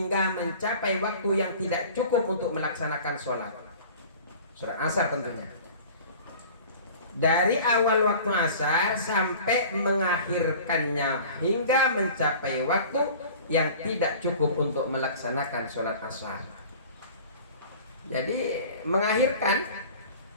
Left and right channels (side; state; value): both; inverted; correlation -0.43